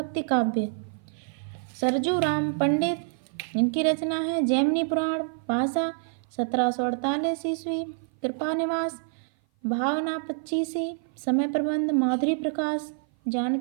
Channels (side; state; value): left; silent; 56 dB below the other